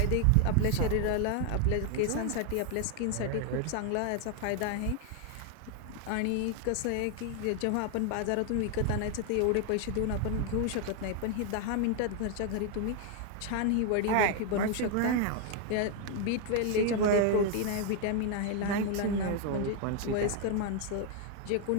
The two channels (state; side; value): different; both; correlation 0.00